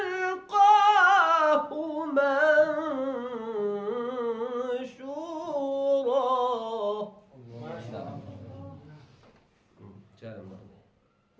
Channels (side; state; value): both; identical; correlation 1.00